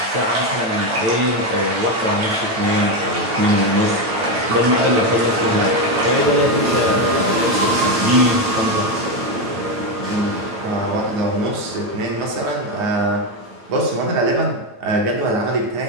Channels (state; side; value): late; left; 9.1 ms